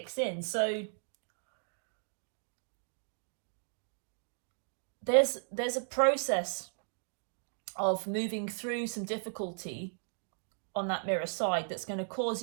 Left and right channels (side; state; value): left; silent; digital silence